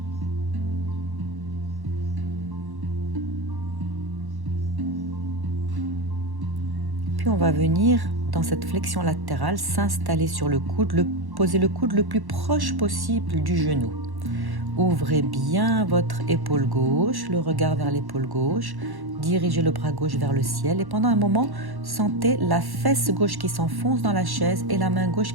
Puis on va venir dans cette flexion latérale, s'installer sur le coude, poser le coude le plus proche possible du genou. Ouvrez bien votre épaule gauche, le regard vers l'épaule gauche, dirigez le bras gauche vers le ciel et pendant un moment, sentez la fesse gauche qui s'enfonce dans la chaise et la main gauche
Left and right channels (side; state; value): left; late; 1.1 ms